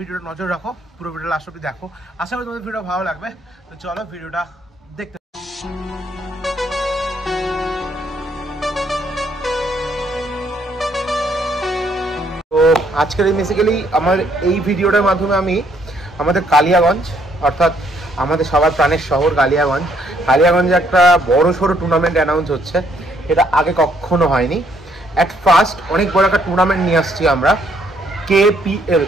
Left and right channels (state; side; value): normal; both; correlation 0.69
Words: নজর রাখো, পুরো ভিডিও লাস্ট অবধি দেখো। আশা করি তোমাদের ভিডিও ভালো লাগবে। তো চলো ভিডিওটা দেখতে। তো আজকের বেসিক্যালি আমার এই ভিডিওটার মাধ্যমে আমি আমাদের কালিয়াগঞ্জ, অর্থাৎ আমাদের সবার প্রাণের শহর কালিয়াগঞ্জে একটা বড় সড়ো টুর্নামেন্ট অ্যানাউন্স হচ্ছে। এটা আগে কখনো হয়নি। অ্যাট ফার্স্ট অনেক বড় একটা টুর্নামেন্ট নিয়ে আসছি আমরা, KPL,